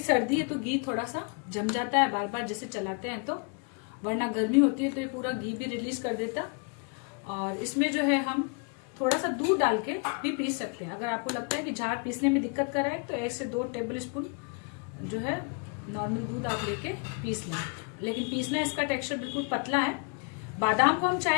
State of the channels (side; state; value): right; quieter; 35.7 dB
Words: है तो घी थोड़ा सा जम जाता है बार बार जैसे चलाते हैं, तो वरना गर्मी होती है तो ये पूरा घी भी रिलीज कर देता। और इसमें जो है हम थोड़ा सा दूध डाल के भी पीस सकते हैं। अगर आपको लगता है कि जार पीसने में दिक्कत कर रहा है तो 1 से 2 टेबल स्पून जो है नॉर्मल दूध आप लेके पीस लें। लेकिन पीसना इसका टेक्सचर बिल्कुल पतला है। बादाम को हम